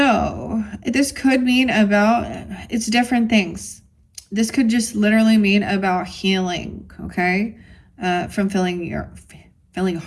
This could mean it's different things. This could just literally mean about healing, okay? From feeling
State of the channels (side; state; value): both; identical; correlation 1.00